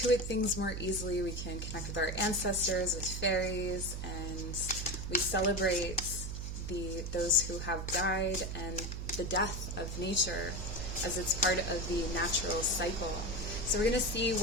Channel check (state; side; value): noise; right; hum, 5 dB below the sound